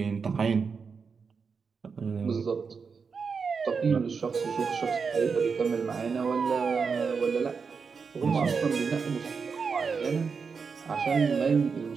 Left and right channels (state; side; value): quieter; left; 5.5 dB